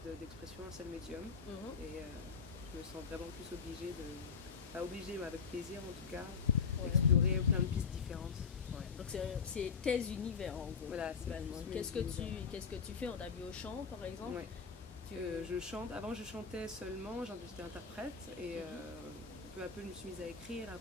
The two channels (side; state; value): right; quieter; 5.8 dB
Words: d'expression, un seul médium. Et je me sens vraiment plus obligée pas obligée, mais avec plaisir en tout cas, d'explorer plein de pistes différentes. Donc c'est tes univers en gros. Voilà, qu'est-ce que tu fais? On t'a vu au chant par exemple? Je chante. Avant je chantais seulement, j'étais interprète et peu à peu je me suis mise à écrire, à